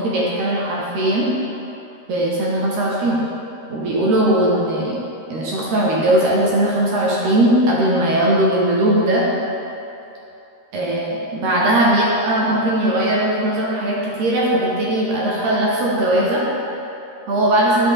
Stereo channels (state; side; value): late; left; 13 ms